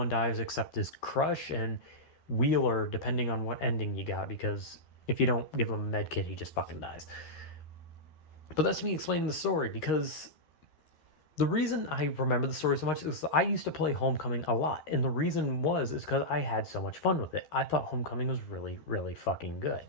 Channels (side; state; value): right; late; 13 ms